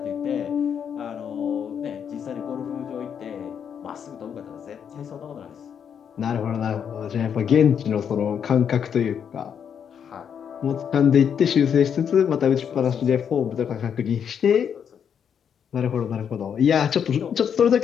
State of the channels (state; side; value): quieter; right; 7.9 dB